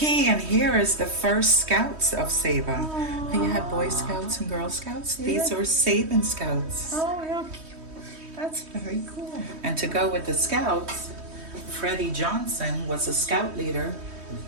and here is the first Scouts of Saba. You had Boy Scouts and Girl Scouts. These are Saban Scouts. Oh, how cute. That's very cool. And to go with the Scouts, Freddie Johnson was a Scout leader,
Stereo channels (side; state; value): left; late; 3.2 ms